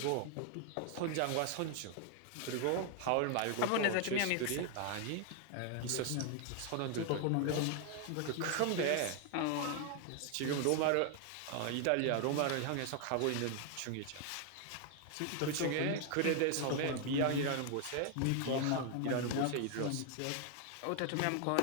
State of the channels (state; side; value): different; both; correlation 0.00